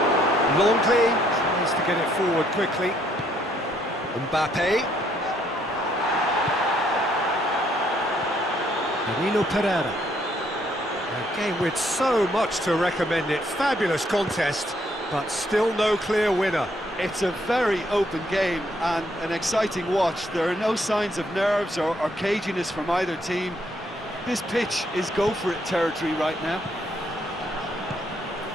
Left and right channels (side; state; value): both; normal; correlation 0.70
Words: Longley tries to get it forward quickly. Mbappe. Danilo Pereira. A game with so much to recommend it. Fabulous contest, but still no clear winner. It's a very open game and an exciting watch. There are no signs of nerves or caginess from either team. This pitch is go-for-it territory right now.